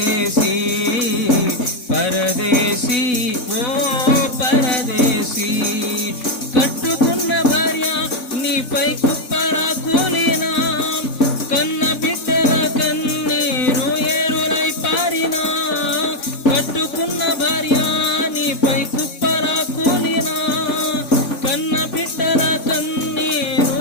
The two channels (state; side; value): late; right; 4.0 ms